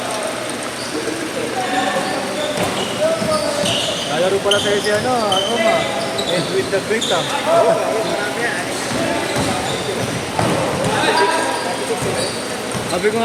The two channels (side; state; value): both; identical; correlation 1.00